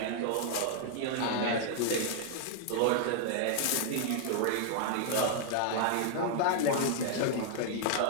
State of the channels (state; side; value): different; both; correlation 0.00